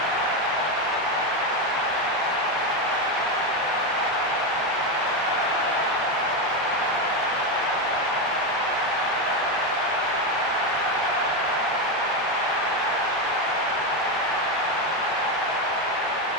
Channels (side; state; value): both; normal; correlation 0.10